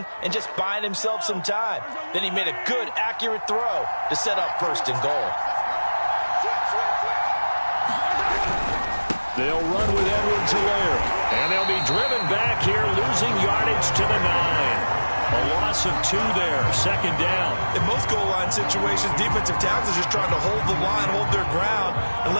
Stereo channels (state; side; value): inverted; both; correlation -1.00